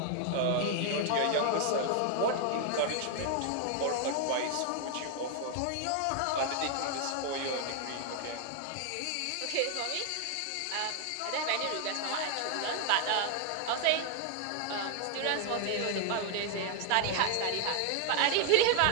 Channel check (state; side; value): different; both; correlation 0.00